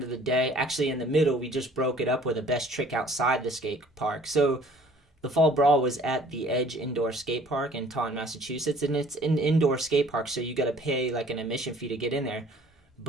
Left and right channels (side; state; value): both; normal; correlation 0.54